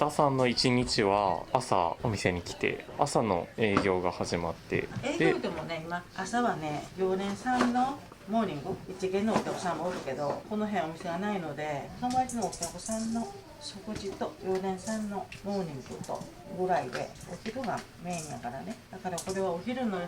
さんの一日は朝お店に来て朝の営業が始まって営業でもね今朝はね常連さんのモーニング一見のお客さんもおるけどこの辺お店がないので友達のお客さんの食事と常連さんのモーニングとぐらいでお昼がメインやからね。だからこれはお昼の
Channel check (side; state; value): both; identical; correlation 1.00